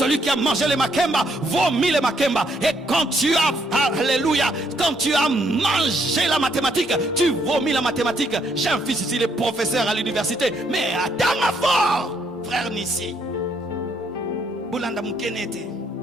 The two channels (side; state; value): both; normal; correlation 0.72